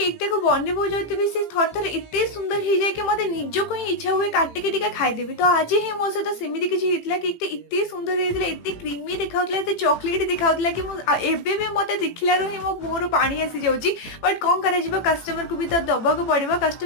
को बनइबो जोथिबी से थर थर एते सुंदर हो जाए कि मते निजको ही इच्छा हुए काटिके टिके खाइदेबी। तो आज ही मो सहित सेमिति किछि हेतला केकटा एते सुंदर हेतला एते क्रीमी देखाउतला एते चॉकलेट देखाउतला कि मो एबे भी मते देखिलारु ही मो मोर पानी आसी जाउची। बट कोन करा जिवो कस्टमर को भी तो दबाको पड़िबो।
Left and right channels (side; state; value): right; late; 18 ms